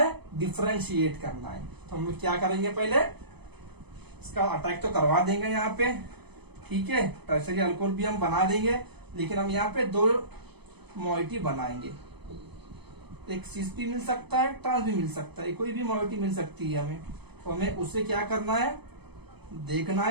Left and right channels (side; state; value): left; late; 0.98 ms